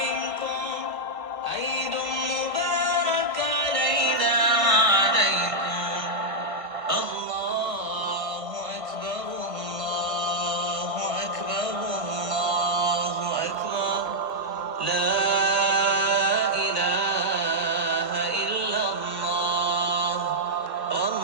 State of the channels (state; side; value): late; left; 1.7 ms